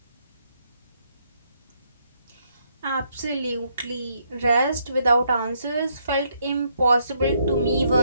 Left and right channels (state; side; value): inverted; both; correlation -0.73